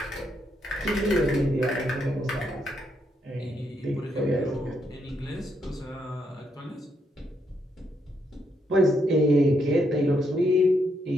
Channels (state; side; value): normal; both; correlation 0.77